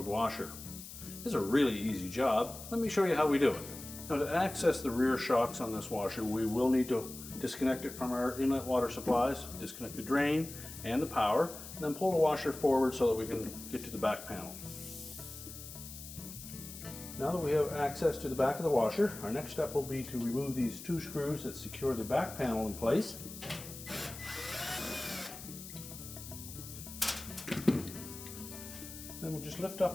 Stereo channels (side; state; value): left; noise; hiss, 13 dB below the sound